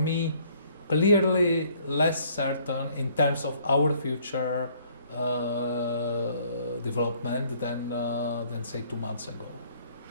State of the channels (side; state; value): both; inverted; correlation -0.61